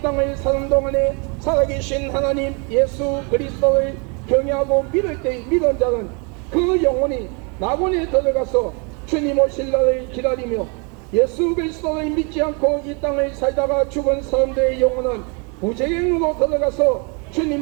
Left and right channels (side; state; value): left; quieter; 33.7 dB